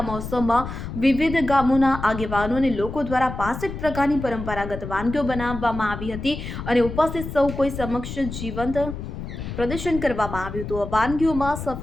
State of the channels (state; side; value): noise; left; rumble, 8 dB below the sound